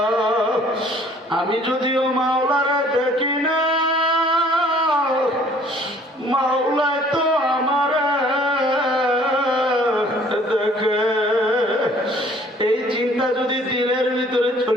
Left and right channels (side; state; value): both; normal; correlation 0.56